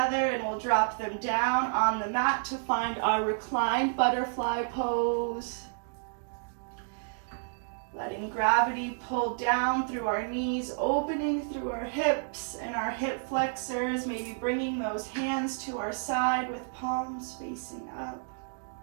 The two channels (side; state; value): left; silent; digital silence